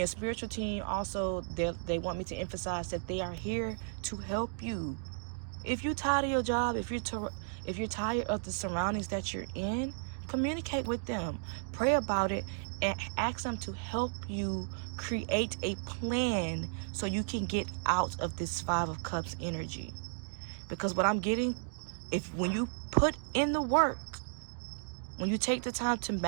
spiritual team also, they want me to emphasize that they are here to help you. If you're tired of your job, if you're tired of the surroundings that you're in, communicate with them. Pray about it and ask them to help you create a plan so you can get out of this Five of Cups energy. Because what I'm getting, when you put in the work, when you take the time to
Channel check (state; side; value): silent; left; digital silence